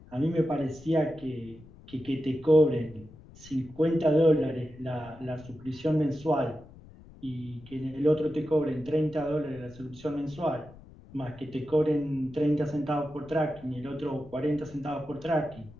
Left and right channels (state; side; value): noise; left; rumble, 21 dB below the sound